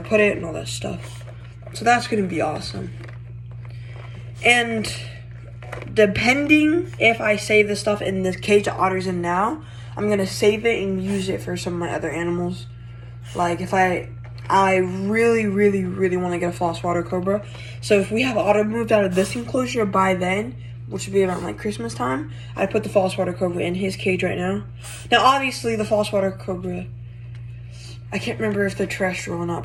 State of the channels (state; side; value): identical; both; correlation 1.00